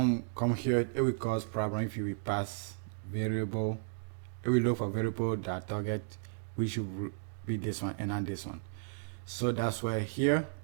we come here, it will cause problem if you will pass variable. It will look for variable that target, which should be this one and not this one. So that's why here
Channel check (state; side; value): silent; left; digital silence